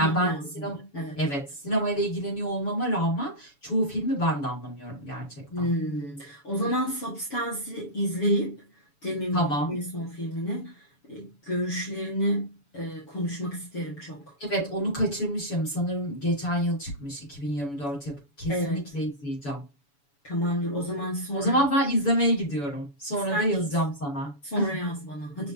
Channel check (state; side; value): late; right; 7.1 ms